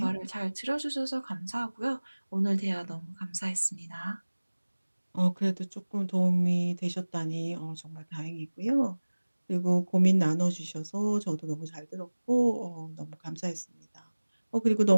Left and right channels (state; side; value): inverted; both; correlation -1.00